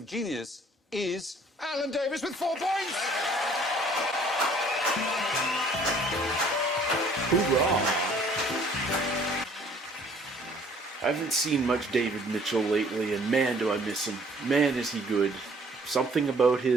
is Alan Davies with 4 points. Hoorah! I haven't seen much David Mitchell lately, and man, do I miss him. Man, is he good. Something about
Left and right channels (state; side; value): normal; both; correlation 0.57